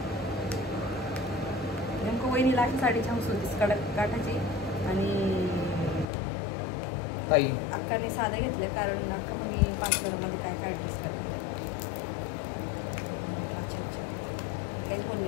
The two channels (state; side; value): drops out; right; at 6.1 s